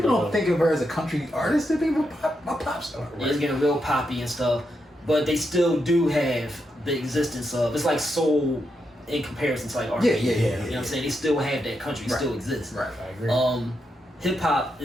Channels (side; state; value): both; normal; correlation 0.83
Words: don't think of her as a country artist. They think of a pop star. Yeah, it's getting real poppy and stuff, but they still do have the existence of. It's like soul in comparison to like R&B. Yeah. You know what I'm saying? They still have that country. Still exists. Right. I agree. Hip hop